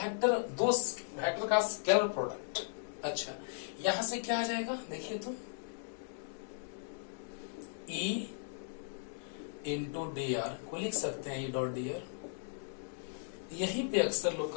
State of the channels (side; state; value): right; silent; digital silence